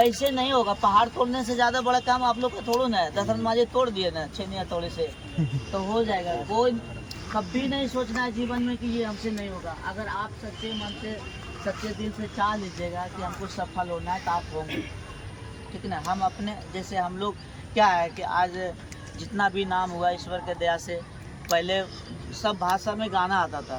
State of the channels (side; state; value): both; identical; correlation 1.00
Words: नहीं होगा। पहाड़ तोड़ने से ज़्यादा बड़ा काम आप लोग का थोड़ा ना है। दशरथ मांझी तोड़ दिए ना छेनिया तोड़े से, तो हो जाएगा। कोई कभी नहीं सोचना है जीवन में कि ये हमसे नहीं होगा। अगर आप सच्चे मन से, सच्चे दिल से चाह लीजिएगा कि हमको सफल होना है, तो आप होंगे, ठीक ना। हम अपने जैसे हम लोग क्या है कि आज जितना भी नाम हुआ ईश्वर के दया से, पहले सब भाषा में गाना आता